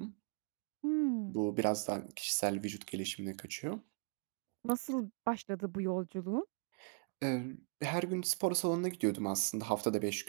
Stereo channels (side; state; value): left; quieter; 39.4 dB